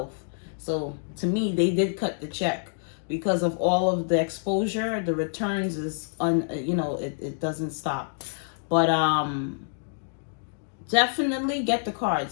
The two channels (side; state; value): right; silent; digital silence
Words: So to me, they did cut the check. Because of all of the exposure, the returns is it doesn't stop. But definitely get the